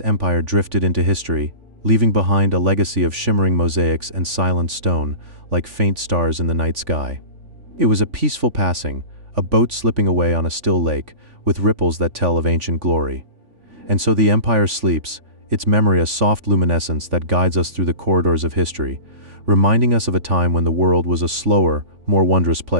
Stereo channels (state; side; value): late; left; 3.5 ms